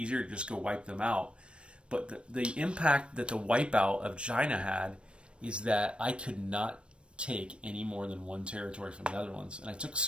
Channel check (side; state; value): left; late; 0.058 ms